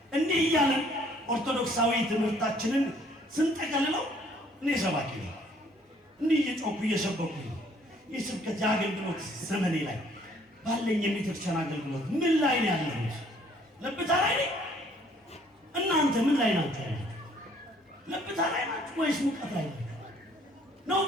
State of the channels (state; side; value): normal; both; correlation 0.61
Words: እንዲህ እያለን ኦርቶዶክሳዊ ትምህርታችንን ስንጠቀልለው እኔ ሰባኪ ነው። እንዲህ እየጮኩ እየሰበኩ የስብከት የአገልግሎት ዘመኔ ላይ ባለኝ የቤተክርስቲያን አገልግሎት ምን ላይ ነው ያለሁት? ለብታ ላይ ነኝ። እናንተ ምን ላይ ናችሁ? ለብታ ላይ ናችሁ ወይስ ሙቀት ላይ ናችሁ? ነው